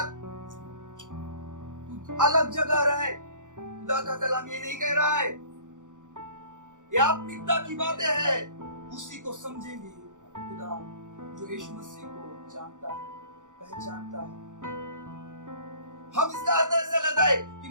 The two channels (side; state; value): left; late; 0.87 ms